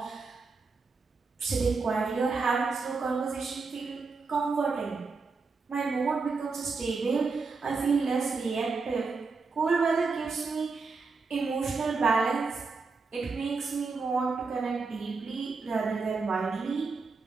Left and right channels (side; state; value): left; quieter; 4.4 dB